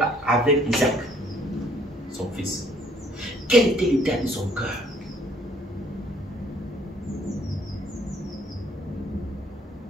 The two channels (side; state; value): both; normal; correlation 0.62